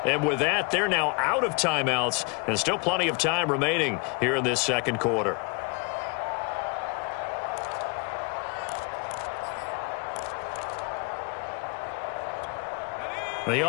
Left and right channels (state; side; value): quieter; right; 32.3 dB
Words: And with that, they're now out of timeouts and still plenty of time remaining here in this second quarter. The